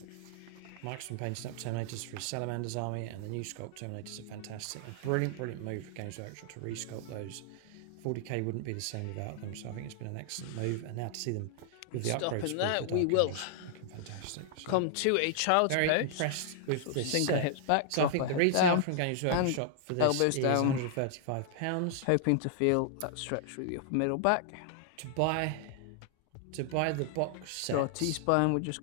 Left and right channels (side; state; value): both; different; correlation -0.01